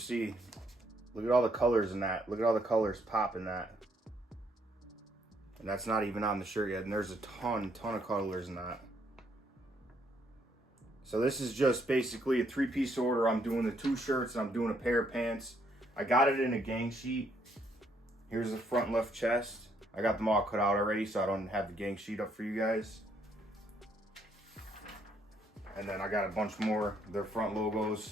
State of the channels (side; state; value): both; normal; correlation 0.71